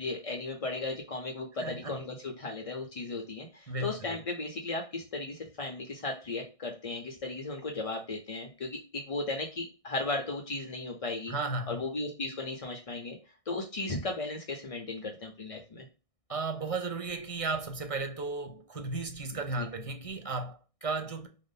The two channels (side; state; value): right; late; 1.6 ms